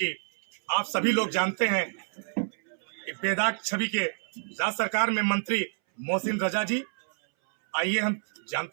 आप सभी लोग जानते हैं कि बेदाग छवि के राज्य सरकार में मंत्री मोहसिन रजा जी। आइए हम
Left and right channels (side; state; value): left; silent; 59 dB below the other